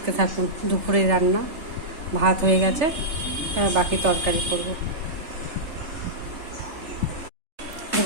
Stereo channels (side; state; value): left; late; 3.4 ms